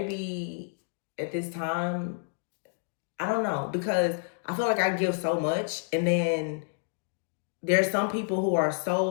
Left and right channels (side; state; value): right; silent; digital silence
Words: at this time, I don't know, because I feel like I give so much, and then there's some people who are